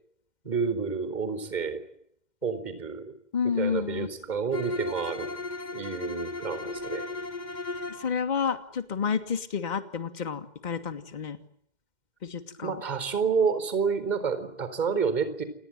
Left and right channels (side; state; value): right; late; 2.1 ms